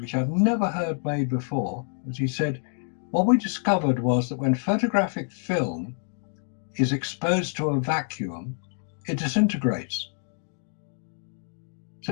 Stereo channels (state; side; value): silent; right; 58 dB below the other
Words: I've never heard made before, was he said, what we discovered was that when photographic film is exposed to a vacuum, it disintegrates.